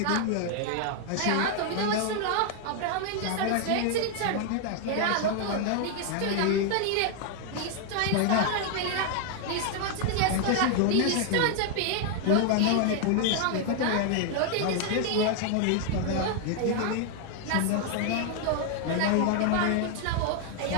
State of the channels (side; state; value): both; different; correlation 0.00